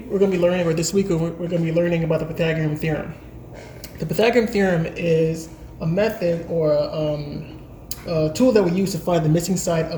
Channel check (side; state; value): both; identical; correlation 1.00